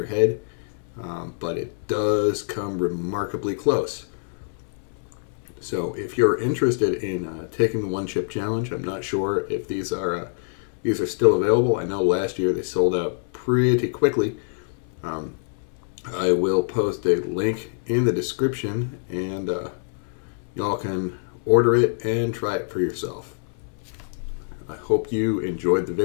head. but it does come remarkably close. So if you're interested in taking the one chip challenge, I'm not sure if these are still available. I know last year they sold out pretty quickly. I will post a link in the description, and y'all can order it and try it for yourself. I hope you enjoyed the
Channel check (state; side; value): silent; right; 62 dB below the other